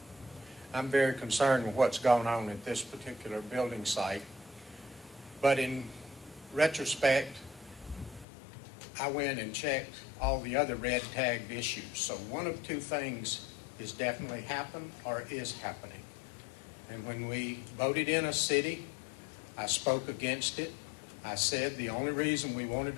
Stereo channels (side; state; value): right; drops out; at 8.2 s